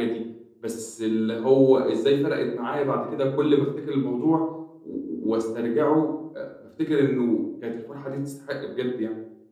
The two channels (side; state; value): both; identical; correlation 1.00